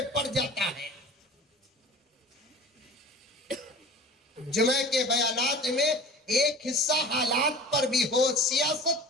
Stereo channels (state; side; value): normal; both; correlation 0.40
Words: پڑ جاتا ہے. جمعہ کے بیانات میں ایک حصہ حالات پر بھی ہو,